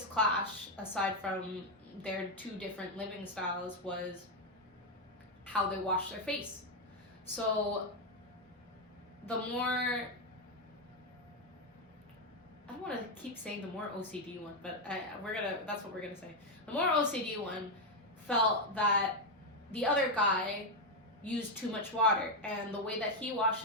clash, aside from their two different living styles, was how they wash their face. So the more, I don't want to keep saying the more OCD one, but that's what we're gonna say. The more OCD one felt that the other guy used too much water, and the way that he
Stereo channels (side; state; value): both; normal; correlation 0.04